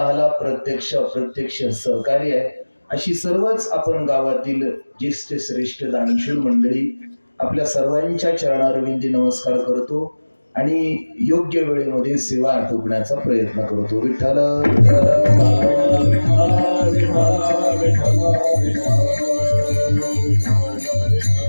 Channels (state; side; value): inverted; both; correlation -1.00